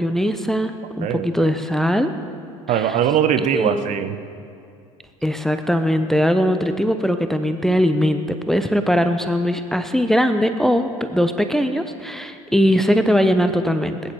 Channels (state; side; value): normal; both; correlation 0.80